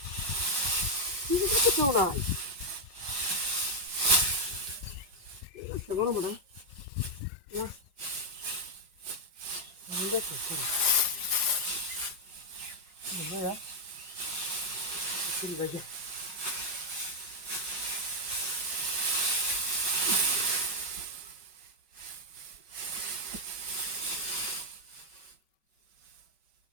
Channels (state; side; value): late; left; 5.4 ms